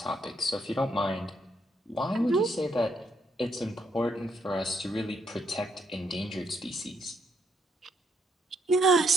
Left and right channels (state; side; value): normal; both; correlation 0.75